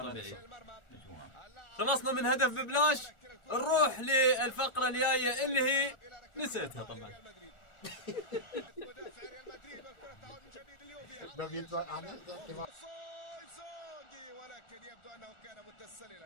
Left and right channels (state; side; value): late; right; 1.4 ms